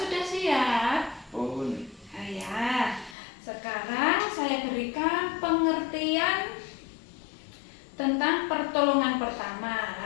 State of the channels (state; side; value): drops out; right; at 3.2 s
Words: siap? Pun. Ya. Sekarang saya berikan pengertian tentang pertolongan pertama.